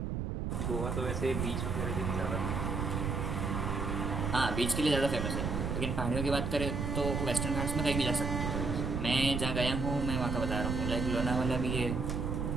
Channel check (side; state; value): right; noise; rumble, 1 dB below the sound